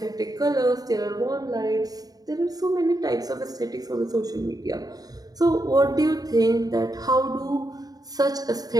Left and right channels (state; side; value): late; left; 0.18 ms